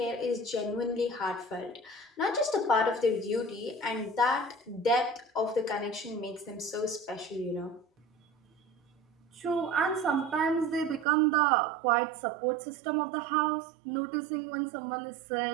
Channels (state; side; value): drops out; left; at 11.1 s